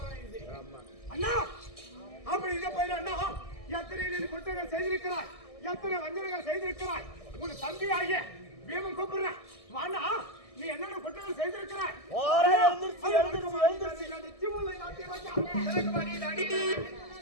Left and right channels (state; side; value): late; right; 1.6 ms